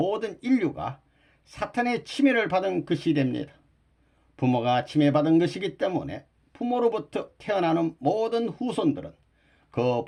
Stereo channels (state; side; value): identical; both; correlation 1.00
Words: 인류가 사탄의 침해를 받은 것이 됩니다. 부모가 침해받은 것이기 때문에 부모로부터 태어나는 모든 후손들은 그